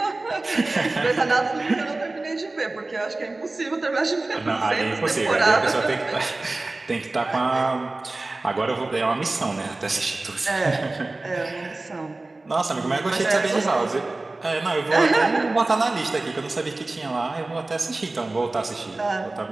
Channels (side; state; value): left; quieter; 3.1 dB